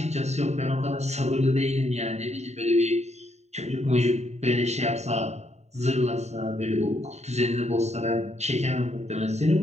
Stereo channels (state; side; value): late; left; 0.32 ms